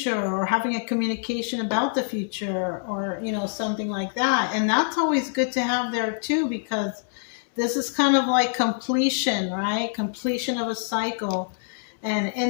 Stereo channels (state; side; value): silent; right; digital silence